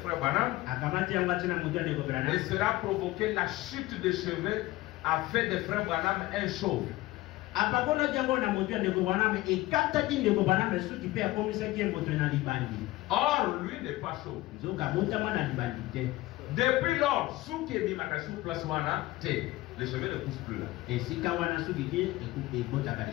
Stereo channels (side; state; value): right; quieter; 18.3 dB